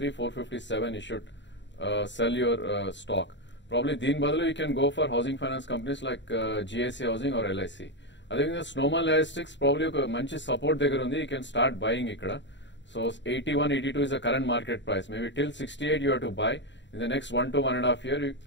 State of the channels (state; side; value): late; right; 0.53 ms